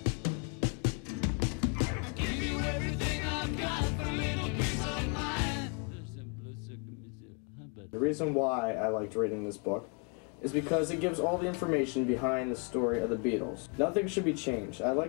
The reason why I liked reading this book is because it gives all the information behind the story of the Beatles. Nothing should be changed. I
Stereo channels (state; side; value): quieter; right; 37.2 dB